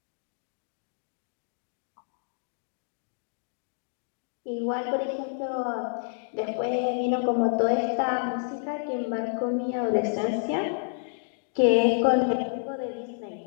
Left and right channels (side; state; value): right; silent; digital silence